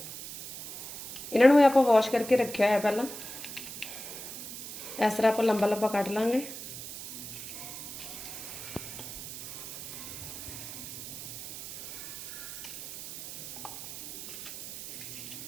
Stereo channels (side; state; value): right; noise; hiss, 10 dB below the sound